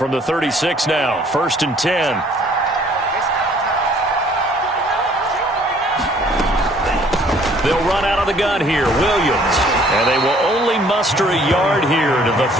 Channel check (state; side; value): normal; both; correlation 0.59